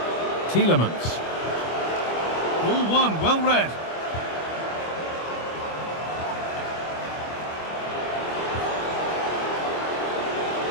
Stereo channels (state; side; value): late; right; 25 ms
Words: Tielemans. Ball one, well read.